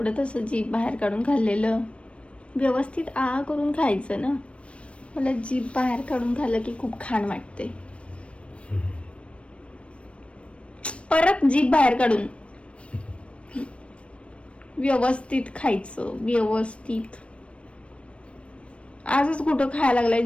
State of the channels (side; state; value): right; late; 0.061 ms